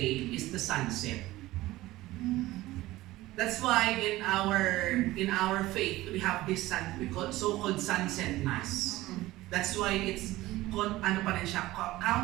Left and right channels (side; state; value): left; quieter; 17.5 dB